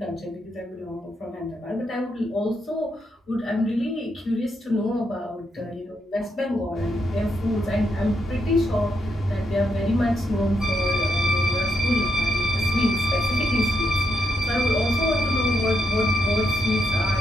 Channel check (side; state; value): both; normal; correlation 0.81